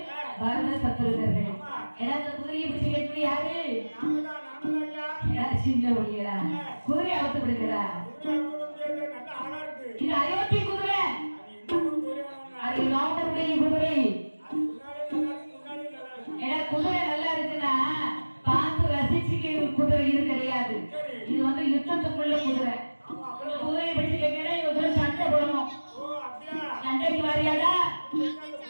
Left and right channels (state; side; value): inverted; both; correlation -1.00